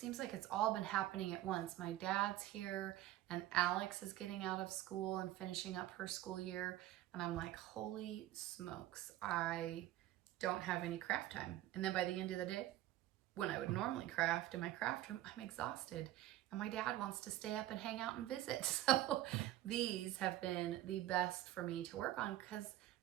like it's all been happening at once. My dad's here and Alex is getting out of school and finishing up her school year. And I'm like, holy smokes, I don't have any craft time. And then by the end of the day, when I would normally craft in my craft room, I'm exhausted. And my dad wants to stay up and hang out and visit. So these have been the best for me to work on because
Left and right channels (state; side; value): quieter; left; 14.6 dB